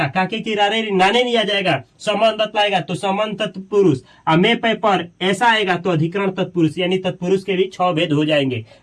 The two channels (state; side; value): identical; both; correlation 1.00